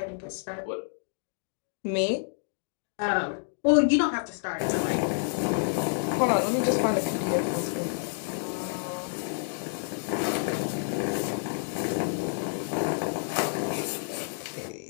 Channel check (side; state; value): right; silent; digital silence